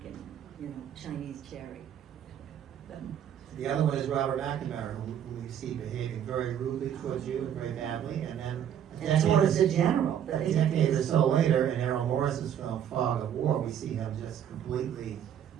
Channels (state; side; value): quieter; left; 9.5 dB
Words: and, Chinese cherry. The other one is Robert McNamara, who we see behaving very rudely towards you and very badly, and then and towards the general. A decade or so later, in Errol Morris's film Fog of War, we see him just completely